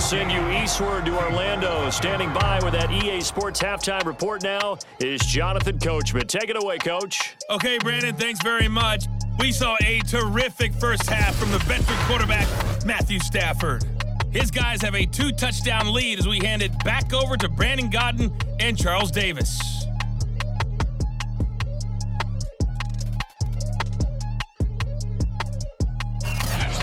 send you eastward to Orlando. Standing by with that EA Sports halftime report now is Jonathan Coachman. Take it away, Coach. Okay, Brandon, thanks very much. We saw a terrific first half from the veteran quarterback, Matthew Stafford. His guys have a 2-touchdown lead as we hand it back over to Brandon Godden and Charles Davis.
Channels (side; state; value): both; identical; correlation 1.00